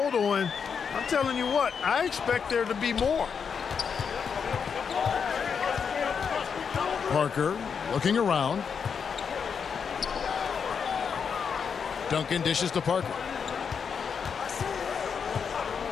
and I'm telling you what, I expect there to be more. Parker looking around. Duncan dishes to Parker.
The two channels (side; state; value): right; quieter; 6.5 dB